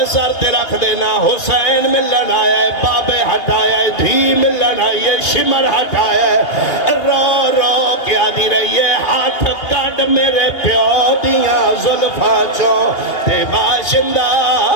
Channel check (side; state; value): right; late; 2.8 ms